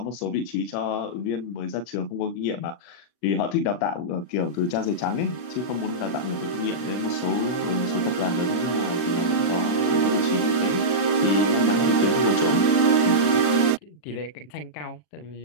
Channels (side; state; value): right; late; 40 ms